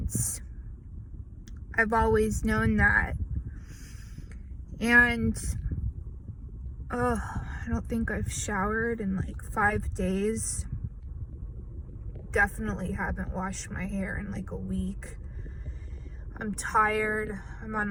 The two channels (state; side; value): identical; both; correlation 1.00